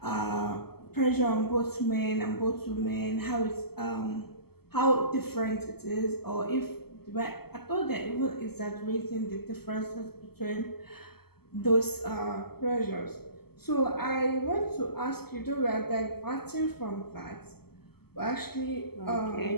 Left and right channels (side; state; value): right; late; 0.96 ms